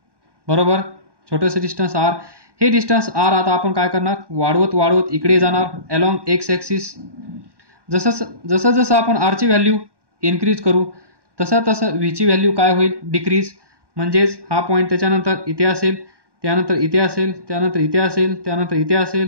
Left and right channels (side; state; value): left; late; 1.1 ms